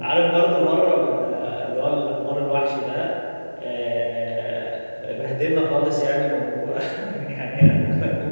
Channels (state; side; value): inverted; both; correlation -1.00